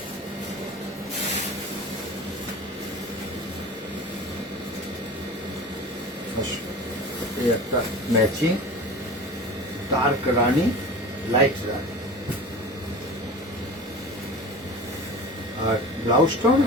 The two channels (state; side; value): normal; both; correlation 0.35